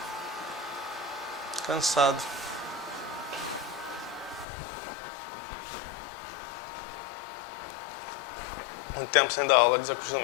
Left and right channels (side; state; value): right; drops out; at 4.5 s